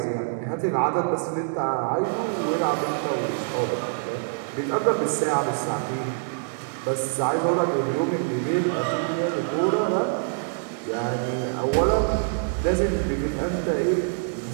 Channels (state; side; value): silent; left; digital silence